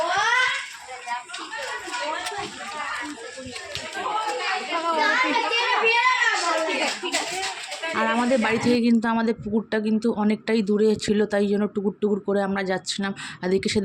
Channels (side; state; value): both; identical; correlation 1.00